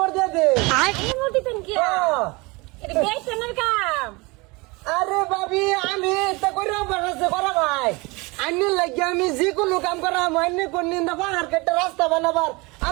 দিয়ে দে। এই মোটিতেন কি এটা বেশনের কাম। আরে ভাবি আমি এটা করে বানাচ্ছে করা ভাই আইনে লাগিয়ে আমি যে কোনো কাম করা মাইনে কোন নিন্দা পাহাড় কেটে রাস্তা বানাবার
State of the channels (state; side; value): quieter; left; 25.6 dB